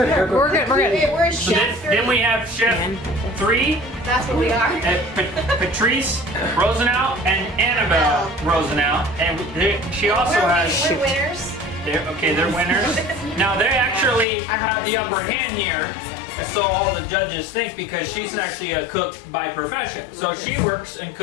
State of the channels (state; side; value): drops out; right; at 14.2 s